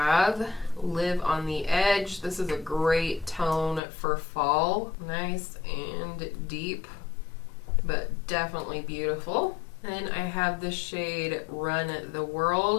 Live on the Edge. This is a great tone for fall. Nice and deep, but definitely beautiful. Then I have the shade Run the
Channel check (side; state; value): right; drops out; at 3.8 s